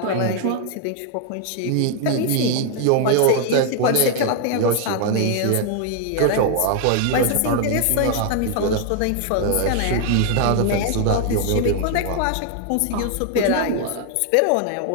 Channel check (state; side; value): different; both; correlation 0.00